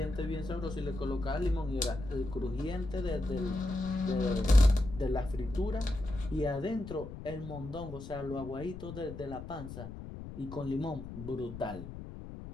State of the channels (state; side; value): noise; left; rumble, 11 dB below the sound